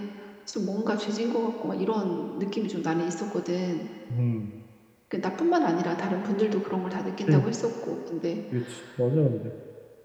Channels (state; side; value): identical; both; correlation 1.00